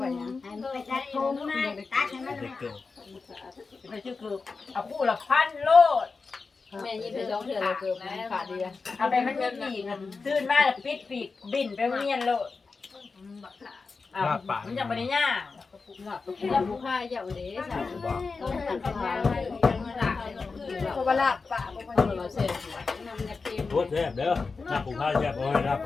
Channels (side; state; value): right; quieter; 4.4 dB